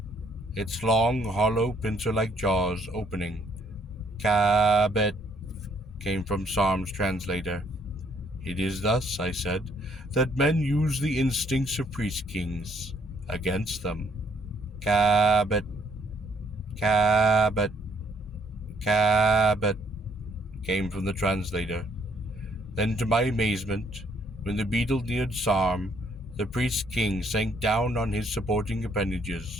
its long, hollow, pincer-like jaws opening. "Cabot," came from Sarm's translator. "It is thus," I said, "that men use the instincts of priest-kings against them." "Cabot, Cabot, Cabot," came from the translator. Then, to my amazement, when the beetle neared Sarm, the priest-king sank down on his supporting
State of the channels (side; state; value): both; normal; correlation 0.67